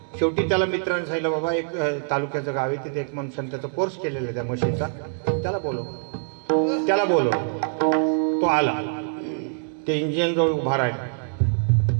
शेवटी त्याला मित्रांनी सांगितलं, बाबा एक तालुक्याचं गाव आहे, तिथे एक माणसाने त्याचा कोर्स केलेला आहे त्या मशीनचा, त्याला बोलव. तो आला, ते इंजिन जवळ उभा राहिला.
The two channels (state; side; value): silent; left; digital silence